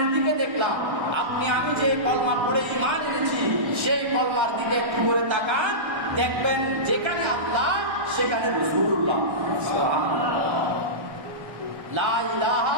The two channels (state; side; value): late; left; 1.1 ms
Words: দিকে দেখলাম। আপনি আমি যে কলমা পড়ে ঈমান এনেছি সেই কলমার দিকে একটু করে তাকান, দেখবেন যেখানে আল্লাহ সেখানে রাসূলুল্লাহ। সুবহানাল্লাহ। লা